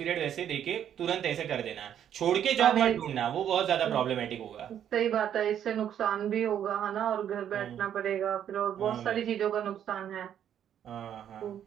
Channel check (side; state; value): left; quieter; 9.8 dB